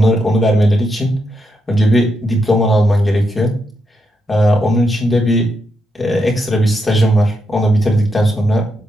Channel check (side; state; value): both; normal; correlation 0.82